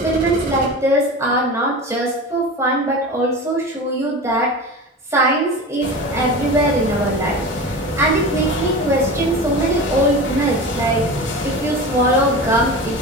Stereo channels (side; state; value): both; normal; correlation 0.30